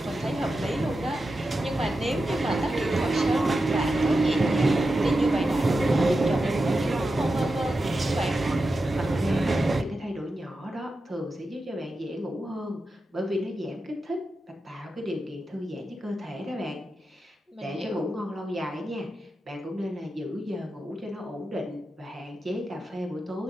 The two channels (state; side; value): normal; both; correlation 0.90